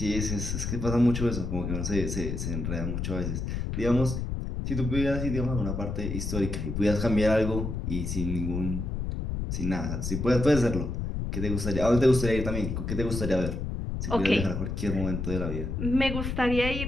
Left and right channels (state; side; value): noise; left; rumble, 3 dB below the sound